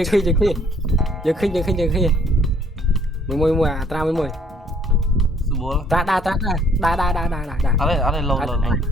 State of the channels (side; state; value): both; normal; correlation 0.62